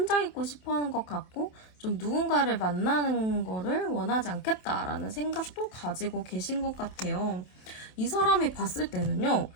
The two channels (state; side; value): late; right; 27 ms